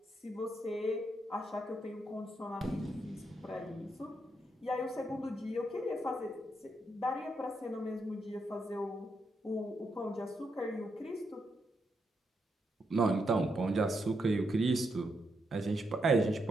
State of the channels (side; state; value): both; normal; correlation 0.81